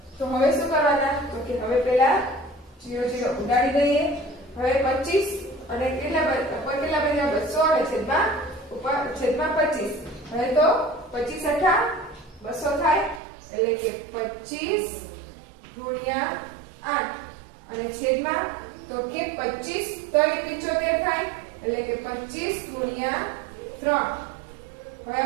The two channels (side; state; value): left; drops out; at 13.2 s